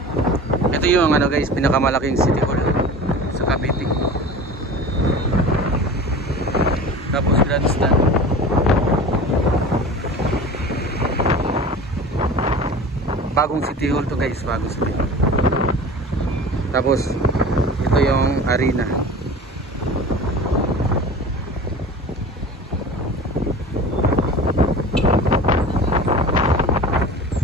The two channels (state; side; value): normal; both; correlation 0.37